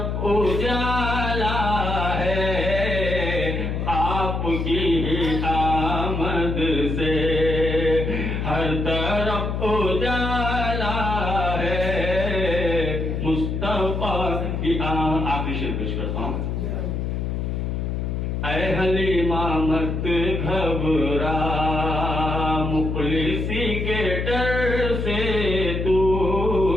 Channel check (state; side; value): noise; left; hum, 2 dB below the sound